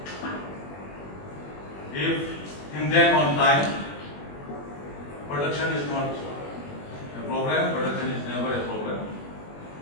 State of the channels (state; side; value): late; right; 21 ms